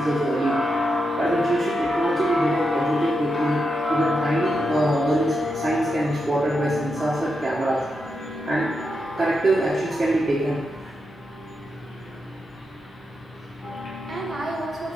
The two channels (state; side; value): normal; both; correlation 0.85